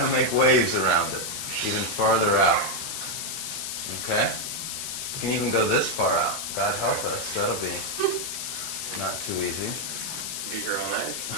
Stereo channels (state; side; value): noise; left; hiss, 4 dB below the sound